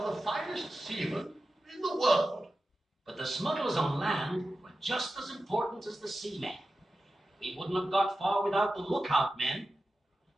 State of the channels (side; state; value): both; normal; correlation 0.93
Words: the finest seamen in the world. But the smugglers on land were just as important as the seamen. We wouldn't have got far without the lookout men.